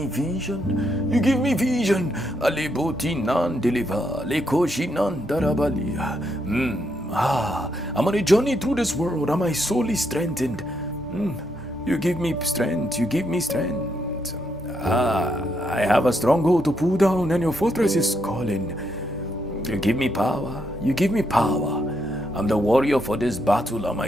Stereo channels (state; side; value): normal; both; correlation 0.78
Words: vision. You give me vision. Aleboti nan deliver. Lekoshi nan darabali. I'm on a journey through this world and my soul is strengthened. You give me strength. You give me strength. I have a stronghold to pull down and your fortress is calling. You give me power. You give me power. I'm the warrior for this battle and